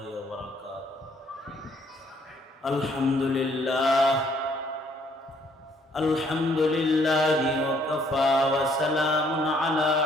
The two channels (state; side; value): normal; both; correlation 0.65